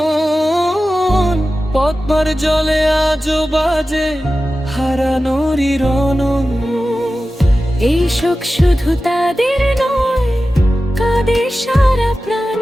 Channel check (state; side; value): normal; both; correlation 0.94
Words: পদ্মার জলে আজও বাজে হারানোরই রণন। এই শোক শুধু তাদের নয়, কাঁদে সারা প্রাণ।